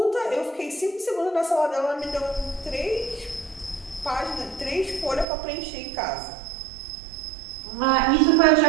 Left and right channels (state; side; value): drops out; left; at 5.2 s